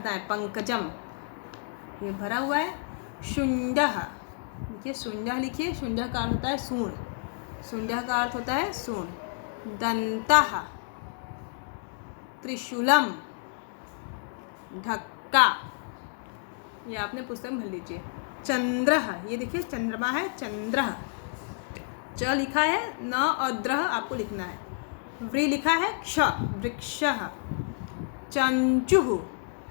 है। पंकजम, ये भरा हुआ है। शुंडः, देखिए शुंडः लिखिए, शुंडः का अर्थ होता है सूंड, शुंडः का अर्थ होता है सूंड। दंतः, त्रिशूलम, ढक्का, ये आपने पुस्तक में भर लीजिए। चंद्रः, ये देखिए चंद्रमा है, चंद्रः, च लिखा है, न और द्रह आपको लिखना है। व्री लिखा है, क्ष, वृक्षः। चंचुः,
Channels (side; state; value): right; silent; 58 dB below the other